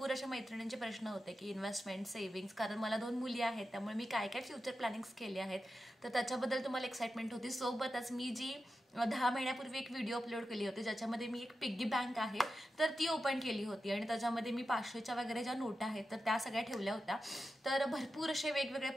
अशा मैत्रिणींचे प्रश्न होते की इन्व्हेस्टमेंट, सेव्हिंग्स, कारण मला 2 मुली आहेत, त्यामुळे मी काय काय फ्युचर प्लॅनिंग्स केले आहेत, तर त्याच्याबद्दल तुम्हाला एक्साइटमेंट होती. सोबतच मी जी 10 महिन्यापूर्वी एक व्हिडिओ अपलोड केली होती, ज्याच्यामध्ये मी एक पिग्गी बँक आहे तर ती ओपन केली होती आणि त्याच्यामध्ये मी 500च्या वगैरे ज्या नोटा आहेत तर त्या सगळ्या ठेवल्या होत्या. तर भरपूर असे वेगवेगळे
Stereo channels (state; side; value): normal; both; correlation 0.90